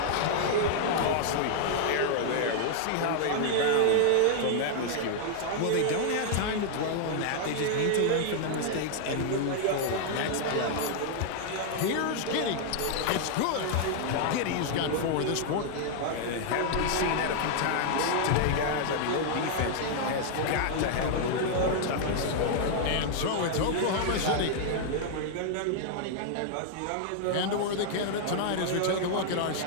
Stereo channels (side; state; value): both; different; correlation 0.00